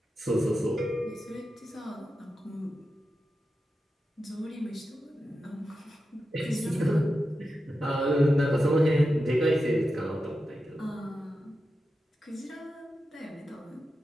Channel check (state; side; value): normal; both; correlation 0.90